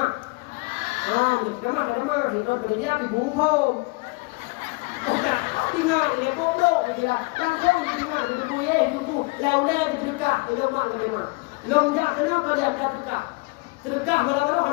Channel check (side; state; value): right; quieter; 27.6 dB